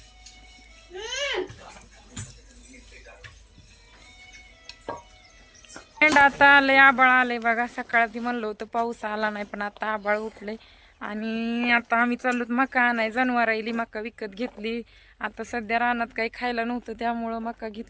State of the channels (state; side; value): identical; both; correlation 1.00